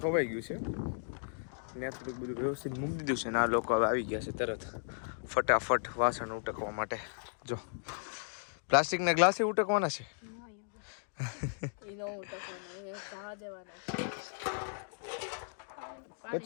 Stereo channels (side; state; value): right; silent; digital silence